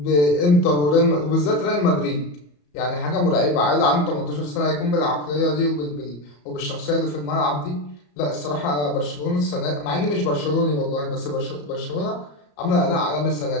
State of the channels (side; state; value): right; late; 34 ms